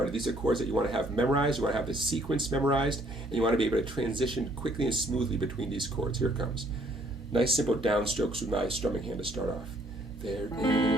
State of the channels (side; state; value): both; normal; correlation 0.63